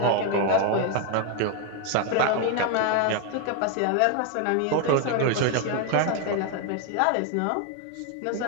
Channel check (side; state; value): both; different; correlation 0.01